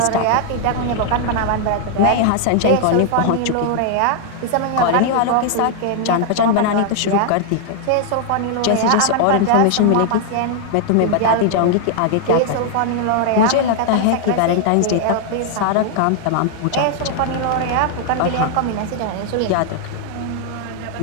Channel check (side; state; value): both; different; correlation 0.00